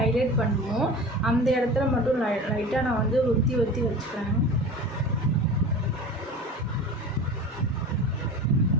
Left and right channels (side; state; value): both; normal; correlation 0.35